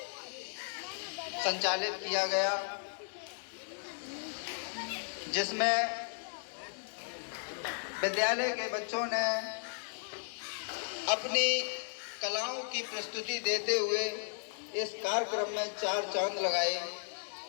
संचालित किया गया, जिसमें विद्यालय के बच्चों ने अपनी कलाओं की प्रस्तुति देते हुए इस कार्यक्रम में 4 चांद लगाए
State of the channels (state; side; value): silent; right; digital silence